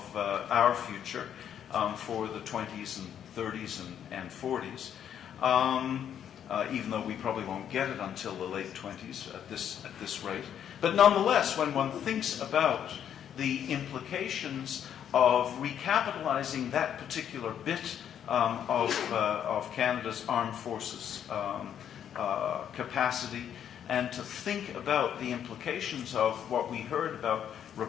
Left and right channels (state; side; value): quieter; right; 9.3 dB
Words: our future for the 20s and 30s and 40s, even though we probably won't get it until the late 20s at this rate. But nonetheless, when one thinks about the implications of recapitalizing that particular bit of Canada's armed forces capacity, and to think about the implications of what we heard about